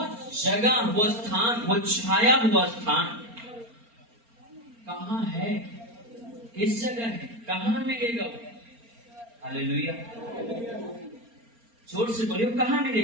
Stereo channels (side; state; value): left; late; 4.3 ms